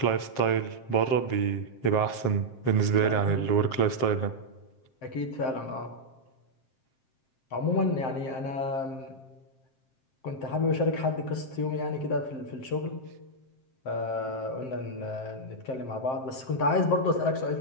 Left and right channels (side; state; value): right; late; 7.6 ms